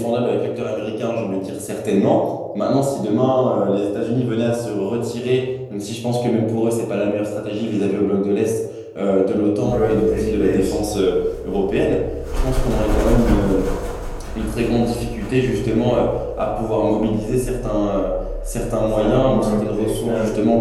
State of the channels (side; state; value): both; identical; correlation 1.00